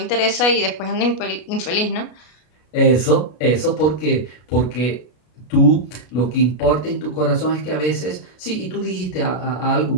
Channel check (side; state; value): right; late; 33 ms